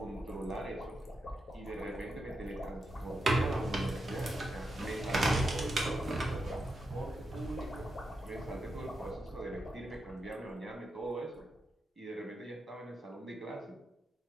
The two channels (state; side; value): normal; both; correlation 0.86